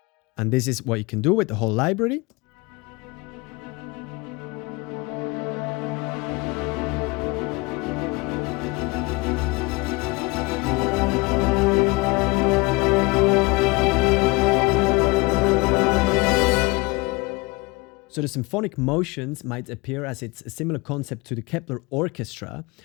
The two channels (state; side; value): quieter; right; 25.1 dB